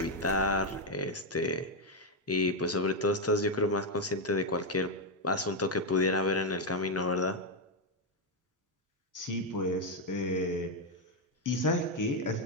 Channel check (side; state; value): both; normal; correlation 0.03